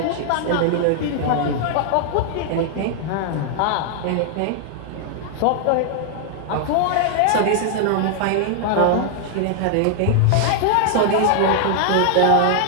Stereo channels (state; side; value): different; both; correlation 0.00